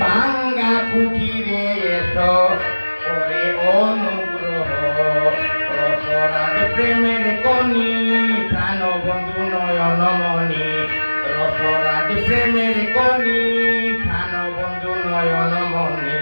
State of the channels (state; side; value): inverted; both; correlation -1.00